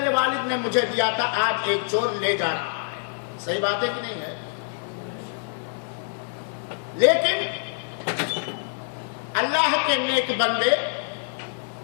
والد نے مجھے دیا تھا، آج ایک چور لے جا رہا ہے۔ صحیح بات ہے کہ نہیں ہے؟ لیکن اللہ کے نیک بندے،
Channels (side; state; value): right; silent; digital silence